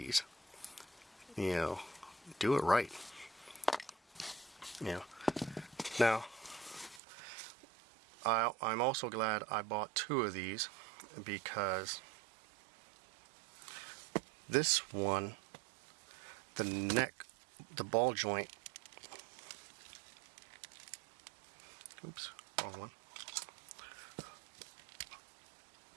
you know, do it right. You know. Now, I'm also glad I bought 2 of these, because this one, the neck, the ball joint, oops, wrong one.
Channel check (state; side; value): drops out; left; at 7.0 s